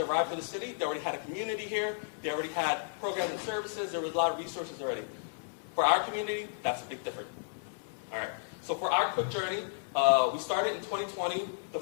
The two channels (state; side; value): silent; right; digital silence